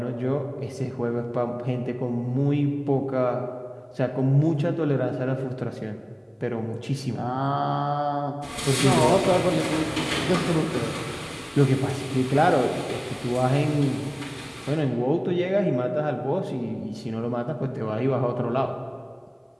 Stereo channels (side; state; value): both; identical; correlation 1.00